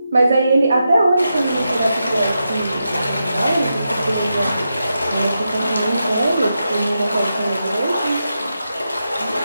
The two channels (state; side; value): inverted; both; correlation -0.87